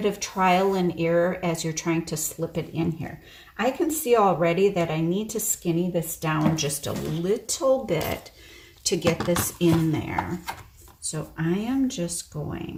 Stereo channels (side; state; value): both; identical; correlation 1.00